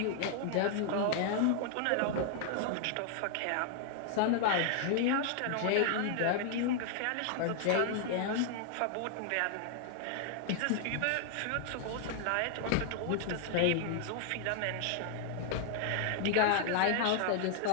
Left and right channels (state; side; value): different; both; correlation 0.00